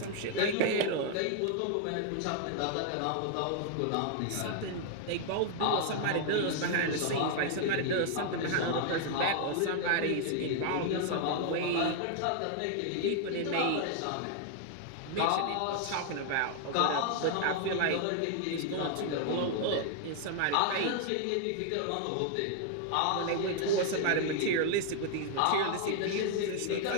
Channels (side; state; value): both; different; correlation 0.00